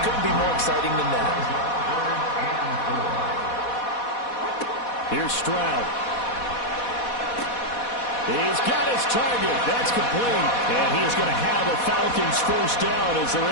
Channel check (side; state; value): right; late; 4.1 ms